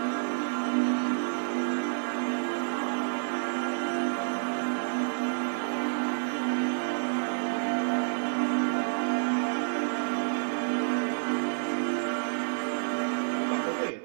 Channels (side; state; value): left; silent; 58 dB below the other